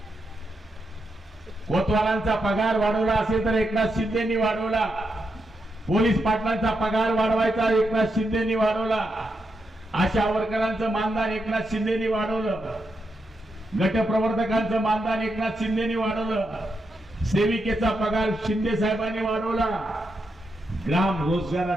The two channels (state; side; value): normal; both; correlation 0.84